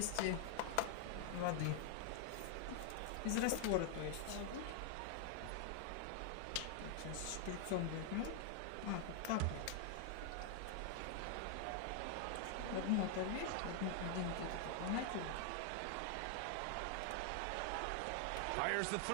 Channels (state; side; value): different; both; correlation 0.00